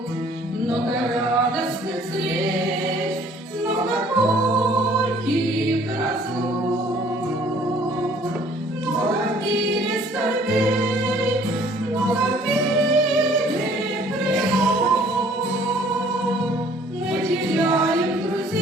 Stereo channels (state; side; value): normal; both; correlation 0.57